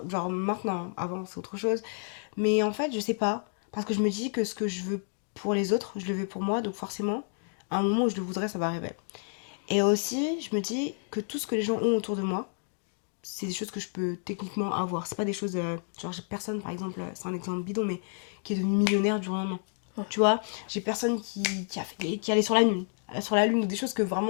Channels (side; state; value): right; silent; 55 dB below the other